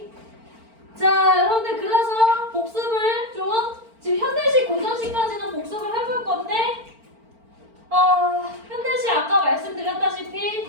자, 여러분들 그래서 복습을 좀 지금 현대식, 고전식까지는 복습을 해볼 건데 현대식 아까 말씀드렸다시피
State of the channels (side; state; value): left; late; 4.4 ms